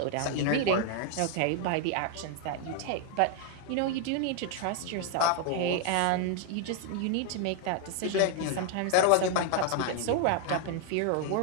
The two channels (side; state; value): both; different; correlation 0.01